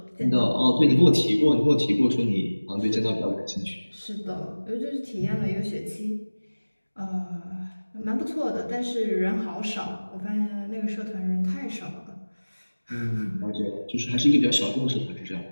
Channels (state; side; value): inverted; both; correlation -1.00